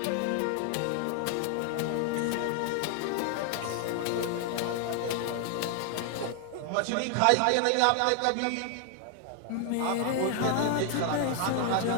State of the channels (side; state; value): both; different; correlation 0.00